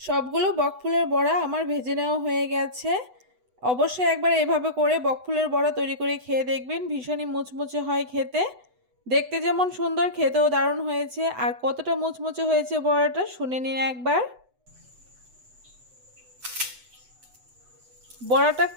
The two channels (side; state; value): left; late; 8.0 ms